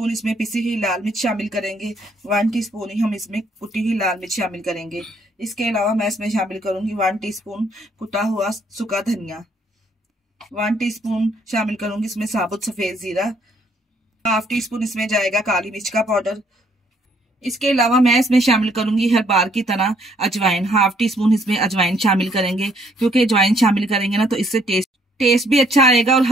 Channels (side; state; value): both; normal; correlation 0.67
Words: इसमें पिसी हुई लाल मिर्च शामिल करेंगे। 1 टीस्पून ही हम इसमें कुटी हुई लाल मिर्च शामिल करेंगे। इसके अलावा मैं इसमें शामिल करूंगी 1 टीस्पून कुटा हुआ सूखा धनिया। 1 टीस्पून शामिल करूंगी इसमें साबुत सफेद जीरा। 1/2 टीस्पून इसमें जाएगा काली मिर्च का पाउडर। इसके अलावा मैं इसमें शामिल करूंगी हर बार की तरह अजवाइन। 1/2 टीस्पून इसमें अजवाइन शामिल करेंगे, क्योंकि अजवाइन शामिल करेंगे ना तो इससे टेस्ट भी अच्छा आएगा और